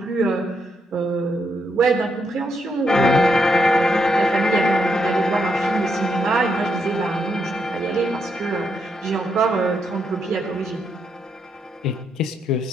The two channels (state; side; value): normal; both; correlation 0.79